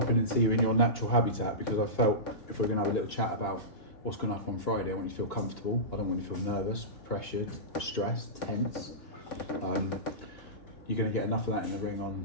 in and see you in your natural habitat because I felt if we're going to have a little chat about what's going to happen on Friday, I want you to feel comfortable. I don't want you to feel nervous, pressured, stressed, tense. You're going to get enough of that in the ring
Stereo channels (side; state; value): right; late; 2.8 ms